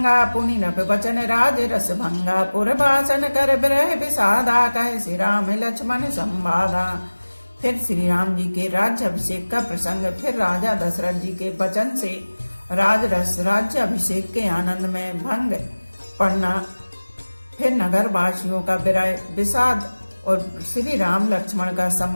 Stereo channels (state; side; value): inverted; both; correlation -1.00